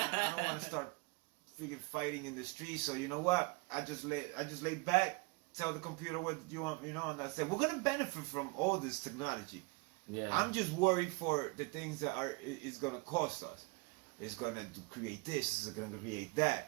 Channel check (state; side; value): quieter; left; 29.1 dB